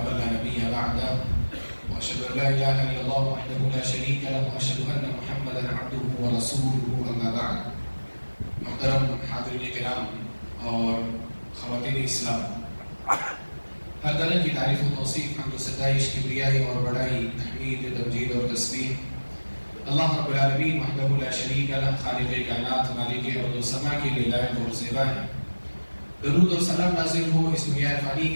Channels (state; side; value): inverted; both; correlation -1.00